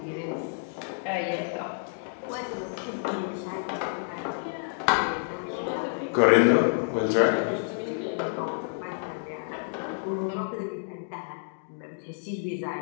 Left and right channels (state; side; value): silent; right; digital silence